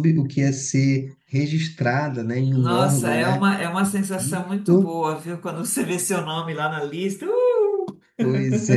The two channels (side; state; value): both; identical; correlation 1.00